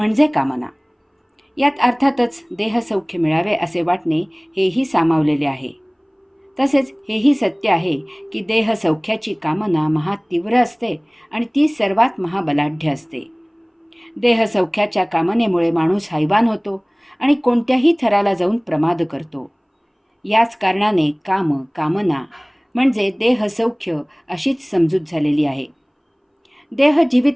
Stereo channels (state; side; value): identical; both; correlation 1.00